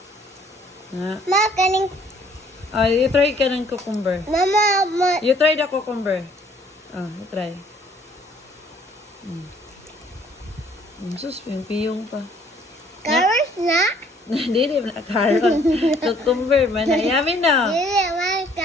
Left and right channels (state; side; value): normal; both; correlation 0.60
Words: Nga. Ma, kaning... You try ka ng cucumber. Mama, You try the cucumber. You try. Sus, piyong pa. carrots na? Dili na carrot. Cucumber man. Yummy na. Dili, man,